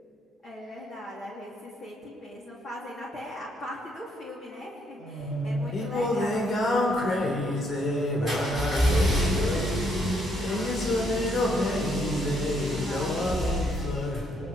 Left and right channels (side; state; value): both; normal; correlation 0.72